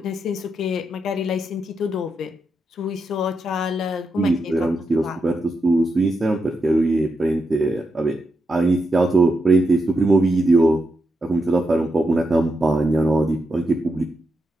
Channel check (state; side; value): normal; both; correlation 0.84